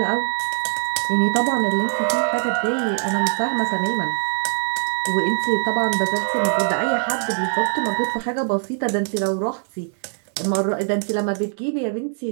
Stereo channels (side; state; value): left; silent; digital silence